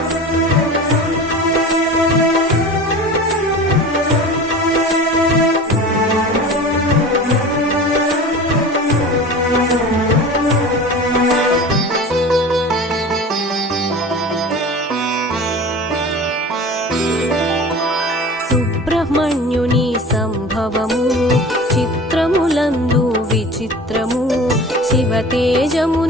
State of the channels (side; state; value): both; normal; correlation 0.36